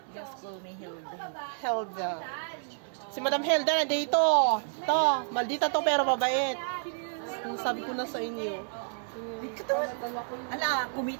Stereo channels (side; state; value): left; silent; 58 dB below the other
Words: Just call me Hilda. Helda. Si Madam Helda na dito. Ito, maldita to pero mabait. Sabi ko na sa inyo. Katawan. Ala,